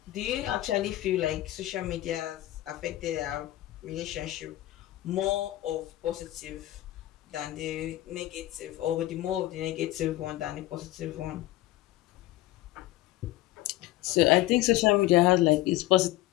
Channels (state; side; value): quieter; right; 16.0 dB